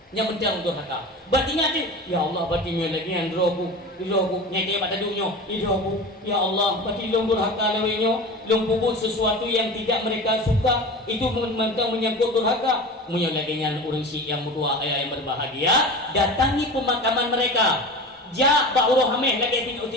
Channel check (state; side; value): normal; both; correlation 0.33